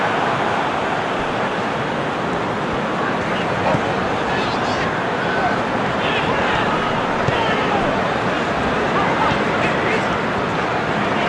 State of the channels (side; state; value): both; identical; correlation 1.00